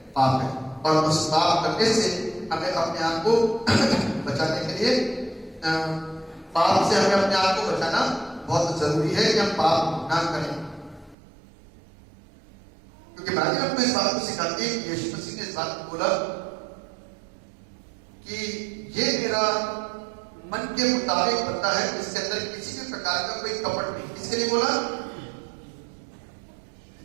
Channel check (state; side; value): drops out; left; at 11.2 s